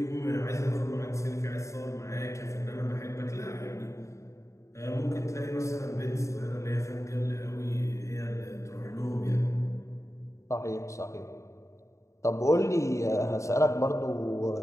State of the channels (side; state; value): right; late; 0.15 ms